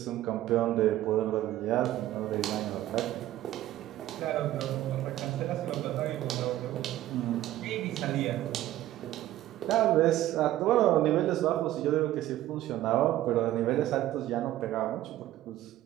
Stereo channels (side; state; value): left; quieter; 14.2 dB